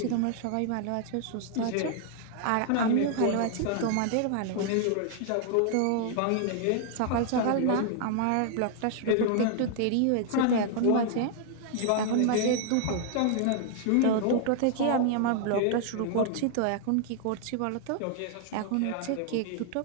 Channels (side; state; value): both; different; correlation 0.00